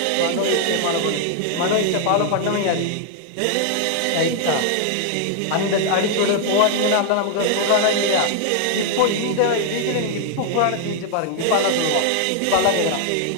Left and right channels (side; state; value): both; different; correlation 0.00